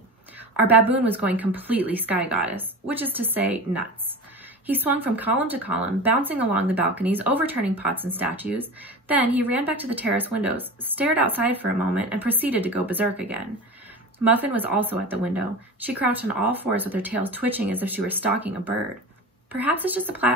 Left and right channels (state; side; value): normal; both; correlation 0.31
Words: Our baboon was going completely sky goddess, which is to say, nuts. He swung from column to column, bouncing along the balconies, overturning pots and statues. Then he ran back to the terrace windows, stared outside for a moment, and proceeded to go berserk again. Muffin was also at the window. She crouched on all fours with her tail twitching as if she were stalking a bird. Perhaps it's just